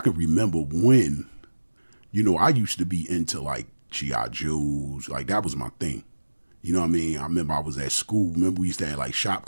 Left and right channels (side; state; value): both; inverted; correlation -1.00